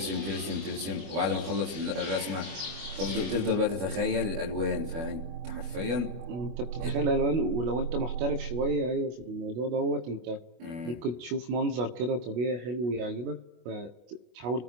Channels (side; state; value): left; late; 25 ms